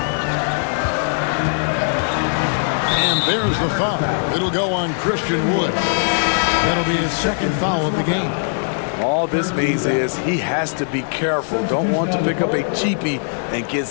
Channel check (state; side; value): silent; right; digital silence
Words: And there's the foul. It'll go on Christian Wood. That'll be his second foul of the game. All this means is he has to be careful. Don't want to pick up a cheapie and get